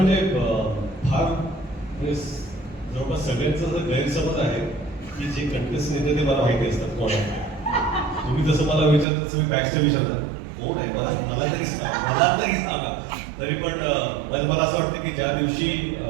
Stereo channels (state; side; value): drops out; left; at 9.1 s